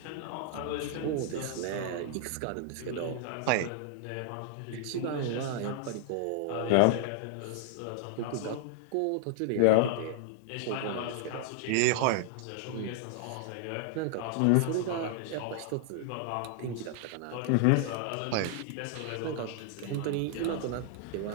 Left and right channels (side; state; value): both; different; correlation 0.00